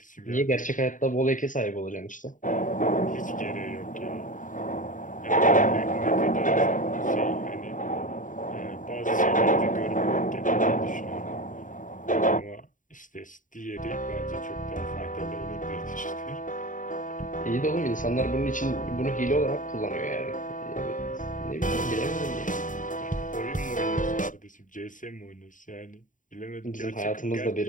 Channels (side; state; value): right; late; 0.38 ms